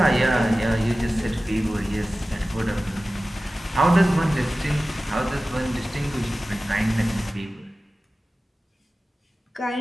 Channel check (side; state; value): both; normal; correlation 0.96